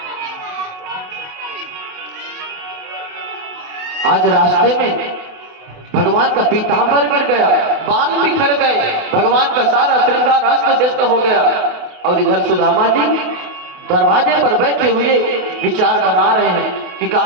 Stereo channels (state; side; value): late; left; 28 ms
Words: आज रास्ते में भगवान का पीतांबर गिर गया, बाल बिखर गए, भगवान का सारा श्रृंगार अस्त व्यस्त हो गया। और इधर सुदामा जी दरवाजे पर बैठे हुए विचार बना रहे हैं कि